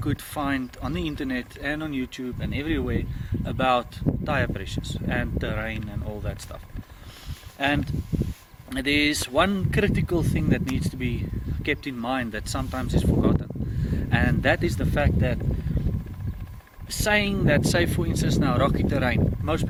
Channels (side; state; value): both; identical; correlation 1.00